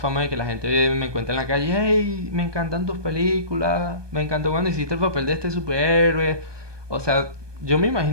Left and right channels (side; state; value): left; late; 1.2 ms